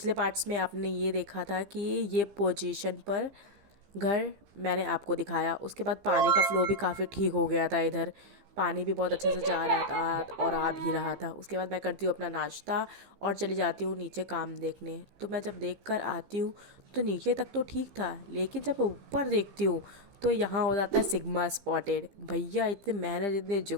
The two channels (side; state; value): left; late; 15 ms